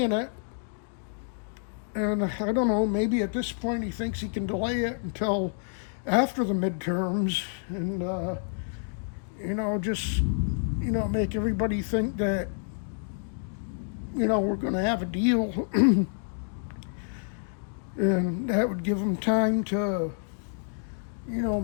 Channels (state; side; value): silent; right; digital silence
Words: it, and I don't know, maybe at this point he thinks he can delay it until after the midterms, and make everybody think that we're going to have a deal, and that would give them time to